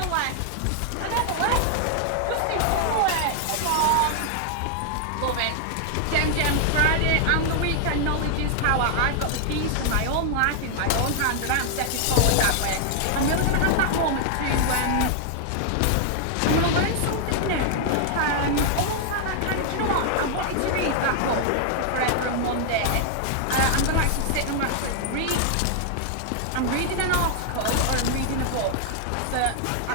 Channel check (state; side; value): different; both; correlation 0.00